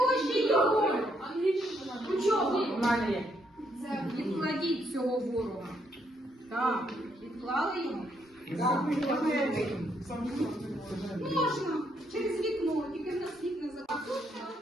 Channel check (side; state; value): both; normal; correlation 0.74